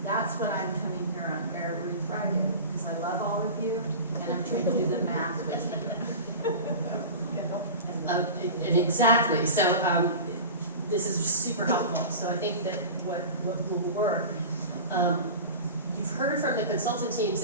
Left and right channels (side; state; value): both; inverted; correlation -0.32